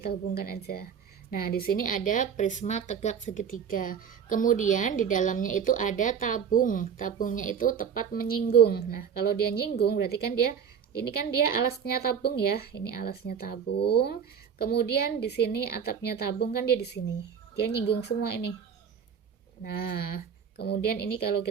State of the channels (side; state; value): left; quieter; 7.3 dB